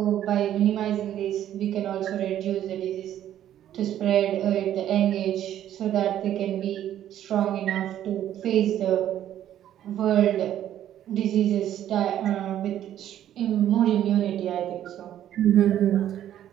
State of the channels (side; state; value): left; quieter; 11.4 dB